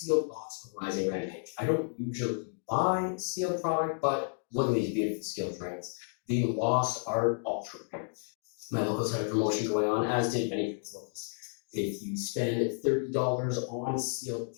box of Rising Rampage. I don't usually buy sealed product, but look at these beautiful skill drinks. The Lost Art Ultra Rare. My locals had a promotion going on, as did many people's locals. If you spend $30 on sealed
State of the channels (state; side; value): silent; right; 57 dB below the other